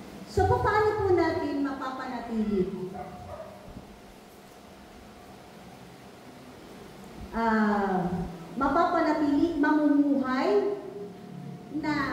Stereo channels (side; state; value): both; identical; correlation 1.00